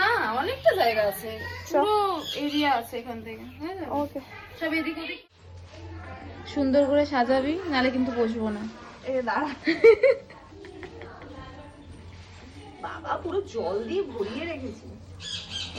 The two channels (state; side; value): identical; both; correlation 1.00